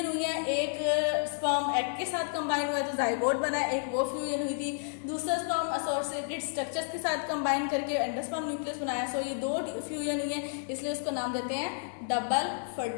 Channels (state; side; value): silent; right; digital silence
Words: हुई हैं, एक स्पर्म एग के साथ कंबाइन हुआ है तो जाइगोट बना है, एक वो फ्यूजन हुई थी, दूसरा स्पर्म एसोसिएटेड स्ट्रक्चर्स के साथ कंबाइन करके एंडोस्पर्म न्यूक्लियस बनाया। सो ये 2 फ्यूजन हुई है, इसलिए उसको नाम देते हैं डबल